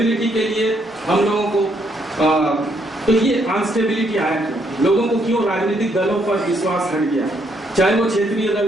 के लिए हम लोगों को तो ये अनस्टेबिलिटी आया क्यों, लोगों को क्यों राजनीतिक दलों पर विश्वास हट गया, चाहे वो क्षेत्रीय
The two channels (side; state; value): both; normal; correlation 0.72